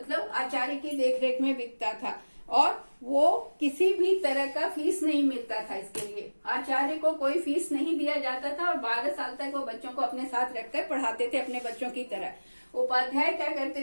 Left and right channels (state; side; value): inverted; both; correlation -1.00